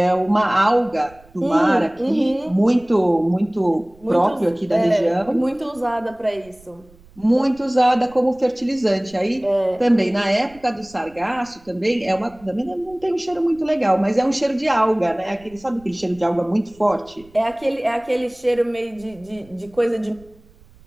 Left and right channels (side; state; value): right; noise; rumble, 26 dB below the sound